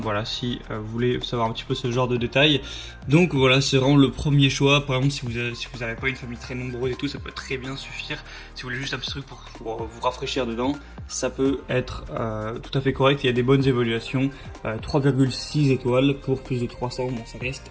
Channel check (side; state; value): both; identical; correlation 1.00